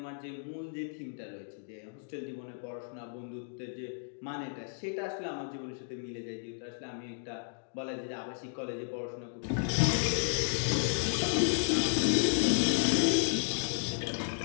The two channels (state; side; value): silent; right; digital silence